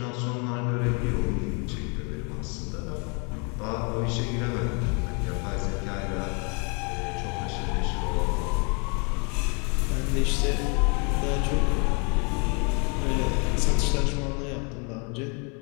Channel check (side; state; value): right; quieter; 34.6 dB